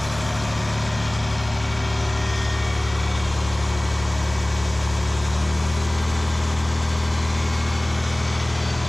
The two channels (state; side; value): noise; left; hum, 16 dB below the sound